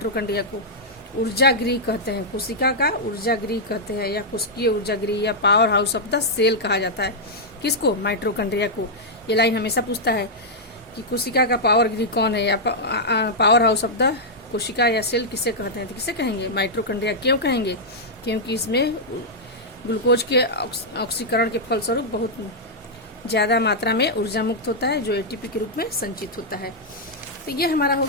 को ऊर्जागृह कहते हैं। कोशिका का ऊर्जागृह कहते हैं, या कोशिकीय ऊर्जागृह, या power house of the cell कहा जाता है। किसको, माइटोकॉन्ड्रिया को। ये लाइन हमेशा पूछता है कि कोशिका का पावर गृह कौन है, या पावर हाउस ऑफ द कोशिका या सेल किसे कहते हैं, तो किसे कहेंगे, माइटोकॉन्ड्रिया। क्यों कहेंगे, क्योंकि इसमें ग्लूकोज के ऑक्सीकरण के फलस्वरूप बहुत ज़्यादा मात्रा में ऊर्जा मुक्त होता है, जो एटीपी के रूप में संचित होता है। तो ये हमारा हो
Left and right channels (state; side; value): normal; both; correlation -0.06